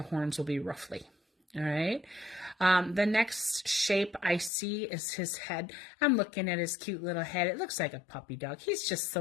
horns will be roughly. All right. The next shape I see is his head. I'm looking at his cute little head. It looks like a puppy dog. He's just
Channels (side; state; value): right; drops out; at 4.5 s